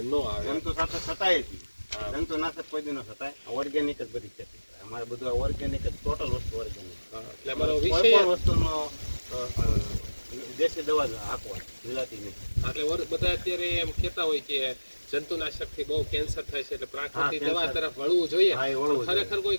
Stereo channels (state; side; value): inverted; both; correlation -1.00